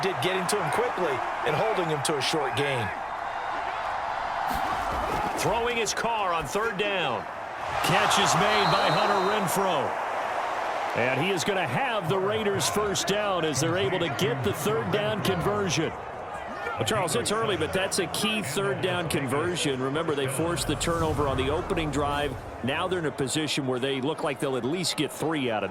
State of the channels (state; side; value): identical; both; correlation 1.00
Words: getting to him quickly and holding him to a short gain. Throwing his car on third down. Catch is made by Hunter Renfrow. And he is going to have the Raiders first down as they're able to get the third down conversion. Well, Charles, it's early, but that's a key third down conversion. Remember, they forced the turnover on the opening drive. Now they're in a position where they look like they'll at least get 3 out of